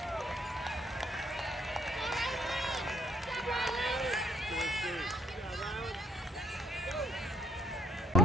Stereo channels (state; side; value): normal; both; correlation 0.66